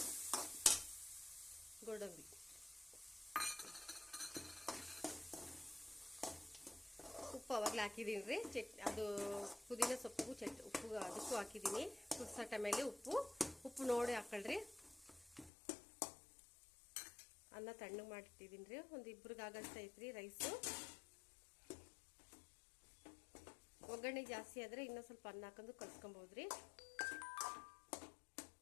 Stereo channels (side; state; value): right; drops out; at 15.5 s